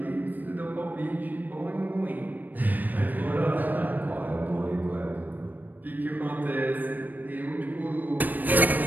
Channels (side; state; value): left; late; 0.087 ms